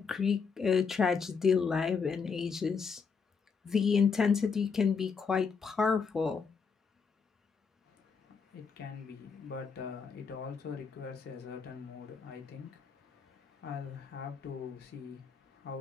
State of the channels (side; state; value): right; quieter; 5.6 dB